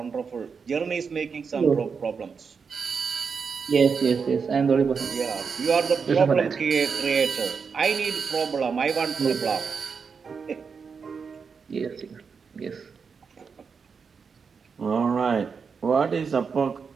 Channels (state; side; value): quieter; left; 5.7 dB